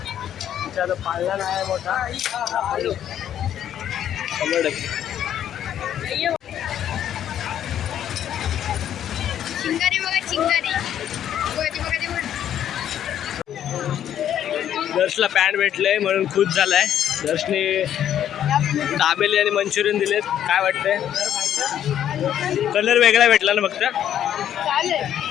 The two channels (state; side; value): quieter; right; 10.4 dB